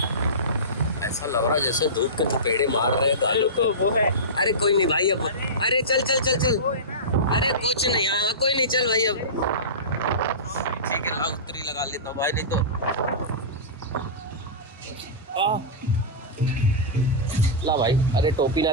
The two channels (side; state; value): both; normal; correlation -0.20